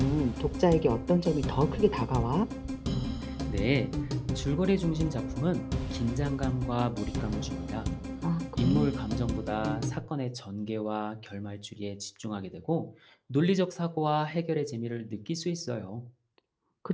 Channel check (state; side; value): identical; both; correlation 1.00